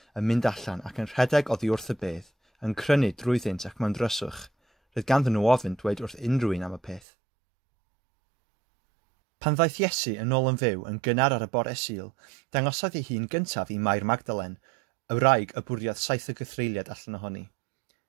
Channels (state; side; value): drops out; left; at 7.0 s